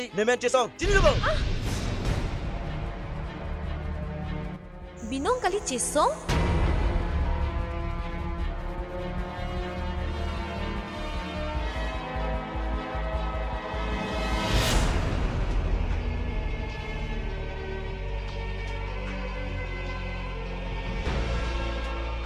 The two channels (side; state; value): both; identical; correlation 1.00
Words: nemen Chesong. Sini dulu. Binong kali Chesong?